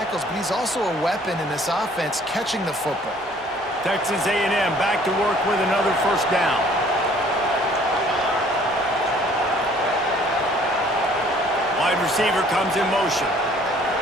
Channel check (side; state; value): both; normal; correlation 0.57